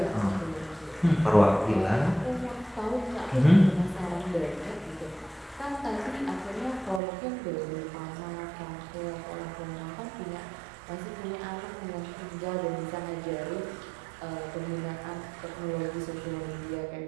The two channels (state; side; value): drops out; left; at 7.0 s